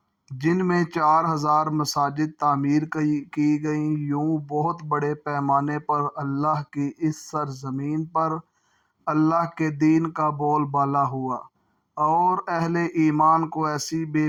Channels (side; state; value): both; identical; correlation 1.00